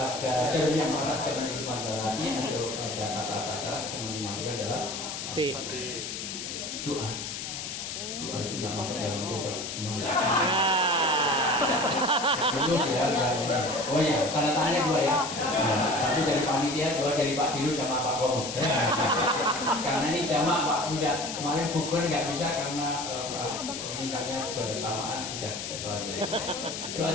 jarum yang merah, jangan disimpan dalam hati. Atau ada kata-kata salah, yang dimasukkan dalam doa. Doa itu nggak masuk dalam kotak terus ya. Oh iya, tanda tangannya 2 ya. Satu dari panitia, 2 dari Pak Dirut sama Pak Komo. Karena ini jamak Pak Buddha. Kemarin bukber nggak bisa karena mintanya bersamaan. Sudah ketelanjang. Doa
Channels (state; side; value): noise; left; hiss, 6 dB below the sound